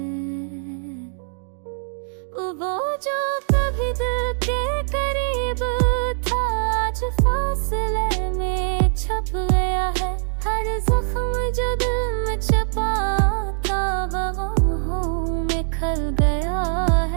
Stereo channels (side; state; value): left; silent; digital silence